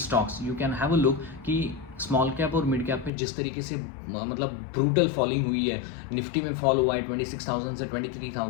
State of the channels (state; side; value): drops out; right; at 3.1 s